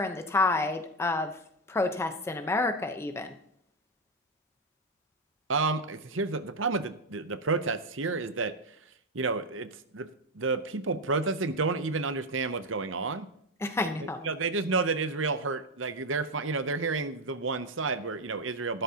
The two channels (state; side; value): normal; both; correlation 0.08